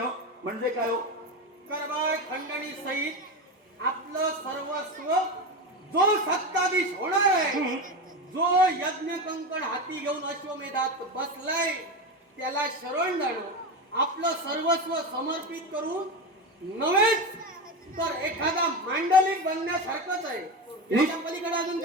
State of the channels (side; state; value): both; normal; correlation 0.19